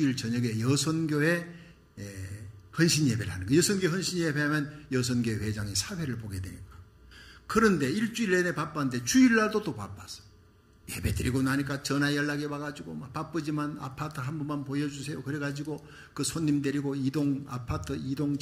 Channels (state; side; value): identical; both; correlation 1.00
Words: 저녁에 여선교회 헌신 예배를 하는 거예요. 여선교회 헌신 예배하면 여선교회 회장이 사회를 보게 되니까. 그런데 일주일 내내 바빴는데 주일날도 또 바빴어. 예배 드리고 나니까 전화 연락이 와가지고 막 바쁘지만 아파트 한 번만 보여주세요. 그래가지고 그 손님 데리고 아파트 이동